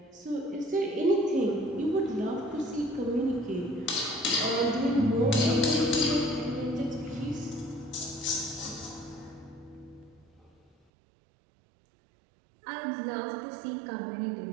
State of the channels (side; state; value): left; drops out; at 10.8 s